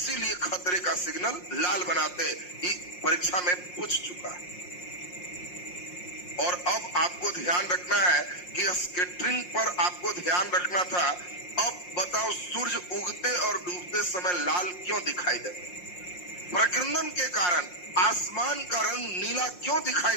इसीलिए खतरे का सिग्नल लाल बनाते। ये परीक्षा में पूछ चुका है। और अब आपको ध्यान रखना है कि स्कैटरिंग पर आपको ध्यान रखना था। अब बताओ, सूर्य उगते और डूबते समय लाल क्यों दिखाई देता? प्रकीर्णन के कारण आसमान का रंग नीला क्यों दिखाई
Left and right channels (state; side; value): late; right; 5.6 ms